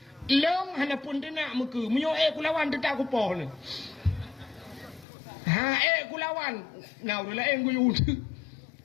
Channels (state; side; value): drops out; right; at 5.1 s